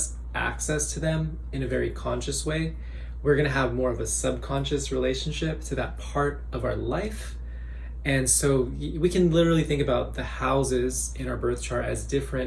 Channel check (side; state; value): both; identical; correlation 1.00